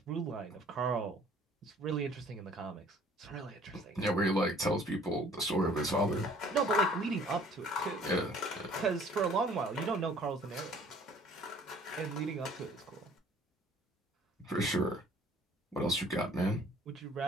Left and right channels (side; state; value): both; normal; correlation 0.55